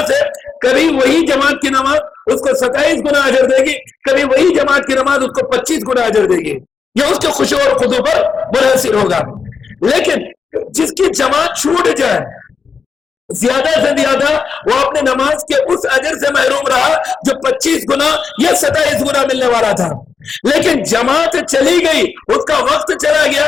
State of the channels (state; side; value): quieter; right; 5.7 dB